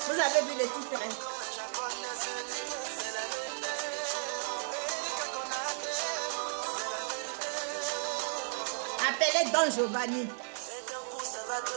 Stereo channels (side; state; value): left; silent; digital silence